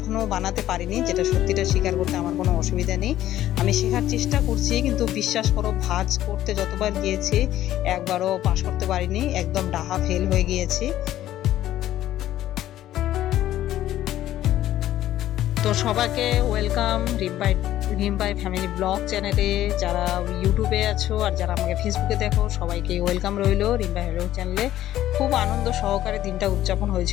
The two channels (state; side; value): quieter; right; 13.2 dB